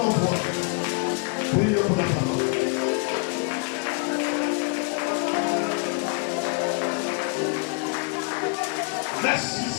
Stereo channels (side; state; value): right; quieter; 35.9 dB